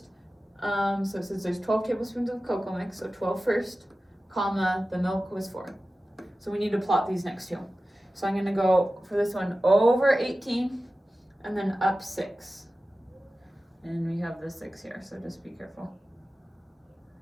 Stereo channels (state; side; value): normal; both; correlation 0.95